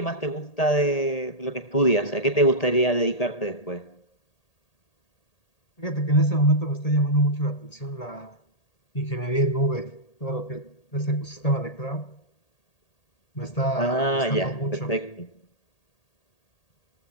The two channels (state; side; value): late; right; 1.8 ms